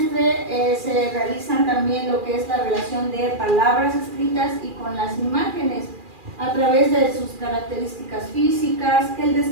se realizan también lo que es la relación de palabras escritas y con las imágenes, a través de sus características físicas, que él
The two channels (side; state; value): left; late; 2.4 ms